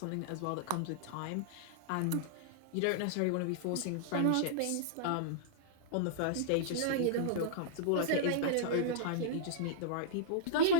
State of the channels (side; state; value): both; different; correlation -0.02